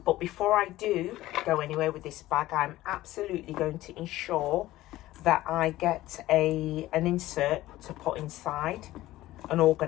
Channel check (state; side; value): quieter; right; 16.1 dB